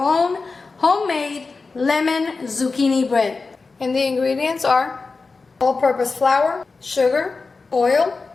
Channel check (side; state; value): right; quieter; 4.1 dB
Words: homemade lemon zucchini bread. And the ingredients are all-purpose flour, sugar, oil,